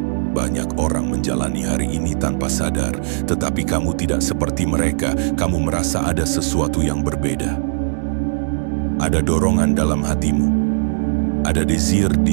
Banyak orang menjalani hari ini tanpa sadar, tetapi kamu tidak seperti mereka. Kamu merasa ada sesuatu yang berbeda. Ada dorongan dalam hatimu. Ada desire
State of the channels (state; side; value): silent; left; digital silence